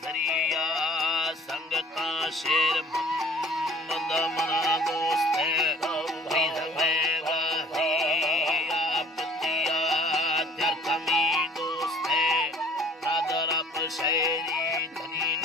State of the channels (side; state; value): both; normal; correlation 0.51